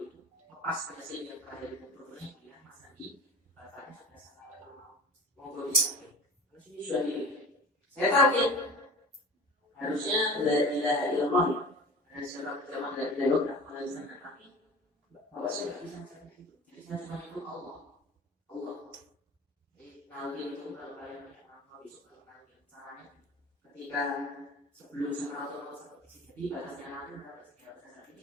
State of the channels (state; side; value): normal; both; correlation 0.39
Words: itu lepas ke Yasin yang terakhir itu problemnya dia Mas Andi bacanya sudah sampai rumah monggo disamping. Terus ini sudah di saya tahu harusnya la ilaha illallah ada surat zaman la ilaha illallah alasan tapi bapak saya nggak bisa mencapai itu. Jadi saya cuma itu Allah. Jadi nanti itu kalau kalian mau besok kalau caranya ketika sebelum Sakaratul Maut seperti jadi batasnya nanti berapa sih?